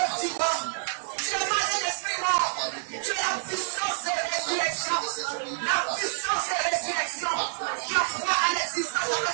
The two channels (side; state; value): left; silent; 60 dB below the other